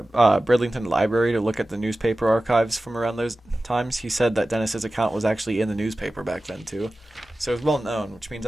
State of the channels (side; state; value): both; normal; correlation 0.96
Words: Bridlington Library to look at the newspaper archives from around those times, he said that Dennis's account was actually in the newspaper back then too, so it was well known, which